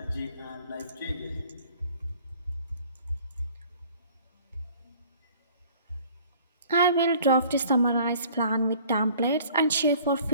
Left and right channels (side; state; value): both; inverted; correlation -0.53